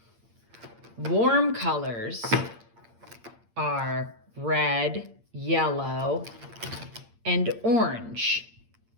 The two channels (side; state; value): left; late; 8.7 ms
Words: Warm colors are red, yellow, and orange.